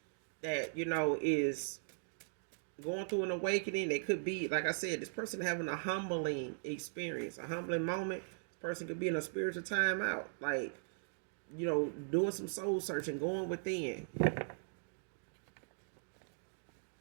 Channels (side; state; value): left; silent; digital silence